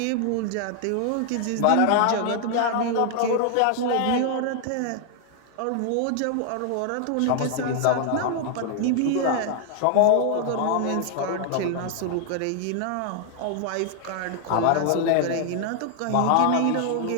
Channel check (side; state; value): both; different; correlation 0.00